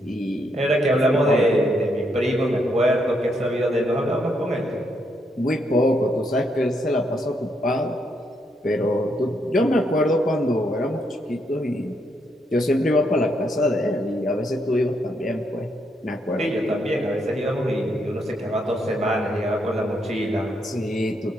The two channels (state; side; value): normal; both; correlation 0.76